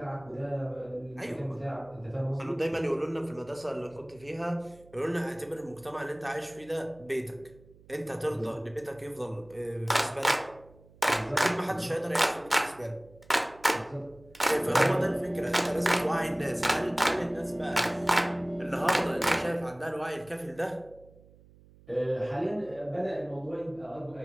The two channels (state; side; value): noise; right; hum, 25 dB below the sound